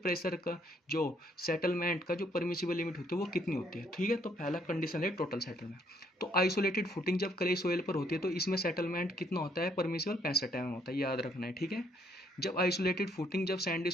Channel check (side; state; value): both; normal; correlation 0.69